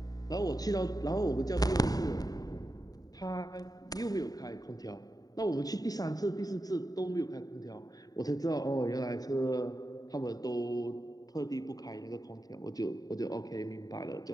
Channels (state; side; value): late; right; 0.18 ms